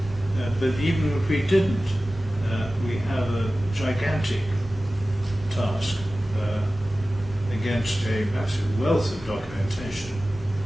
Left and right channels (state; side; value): normal; both; correlation 0.96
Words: But even if we didn't, we have a gigantic task against a massive wealth of documentation,